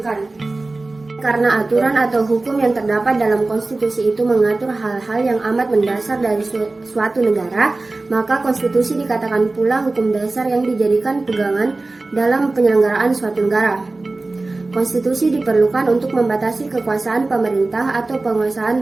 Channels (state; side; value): quieter; left; 3.2 dB